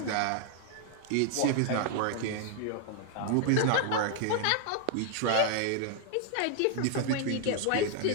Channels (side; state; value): both; different; correlation 0.00